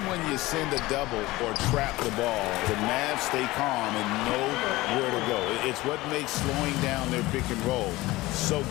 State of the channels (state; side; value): quieter; right; 19.4 dB